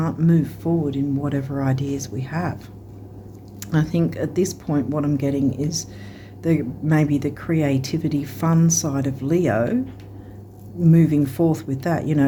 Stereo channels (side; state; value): both; identical; correlation 1.00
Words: move forward in whatever ideas we have. I think at this point what I'm getting is maybe the creativity, fun side of Leo, moving forth with that, you know,